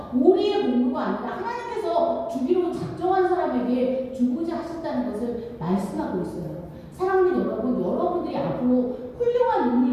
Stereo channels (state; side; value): identical; both; correlation 1.00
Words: 우리의 공부가 아니라 하나님께서 주기로 작정한 사람에게 주고자 하셨다는 것을 말씀하고 있어요. 사랑하는 여러분, 여러분들이 앞으로 훌륭한